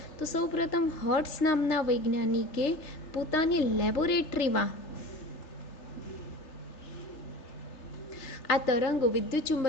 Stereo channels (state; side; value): late; right; 3.4 ms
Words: તો સૌપ્રથમ હર્ટ્ઝ નામના વૈજ્ઞાનિકે પોતાની લેબોરેટરીમાં આ તરંગો વિદ્યુત